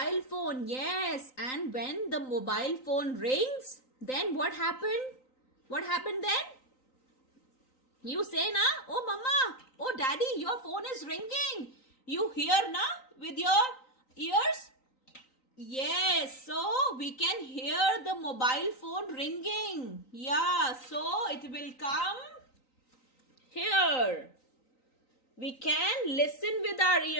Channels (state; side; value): late; right; 3.9 ms